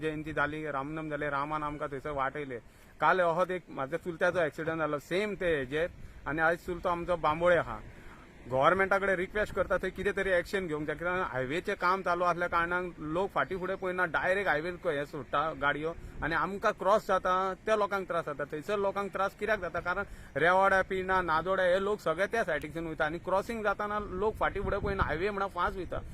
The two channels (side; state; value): both; identical; correlation 1.00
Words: जाली, रामनम जाले, रामान आमकां थंयसर वाटयले। काल अहोच एक म्हाज्या चुलत्याचो ॲक्सिडंट जालो सेम ते हेजेर, आनी आयज चुलतो आमचो बांबोळे आहा। गव्हर्मेंटा कडेन रिक्वेस्ट करता थंय कितें तरी एक्शन घेवंक जाय, कित्याक हायवेचें काम चालू आसल्या कारणान लोक फाटीं फुडें पळयना, डायरेक्ट हायवे हे सोडटा गाडयो, आनी आमकां क्रॉस जाता त्या लोकांक त्रास जाता। थंयसर लोकांक त्रास कित्याक जाता, कारण रेवाड्या पिना नादोड्या हे लोक सगळे त्या सायडीच्यान वयता, आनी क्रॉसिंग जाताना लोक फाटीं फुडें पळयना, हायवे म्हणून फास्ट वयता।